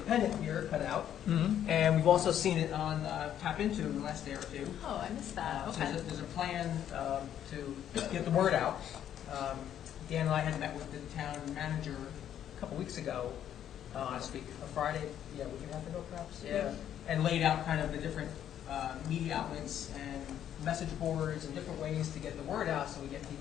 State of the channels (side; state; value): right; quieter; 10.3 dB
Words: here, cut out, and we've also seen it on Tap Into in the last day or two. Oh, I missed that, So okay. there's a plan to get the word out. Dan and I had met with the town manager a couple weeks ago, last week, a Friday, a week and a half ago perhaps, and laid out kind of the different media outlets and message boards and different ways to get the word out so we get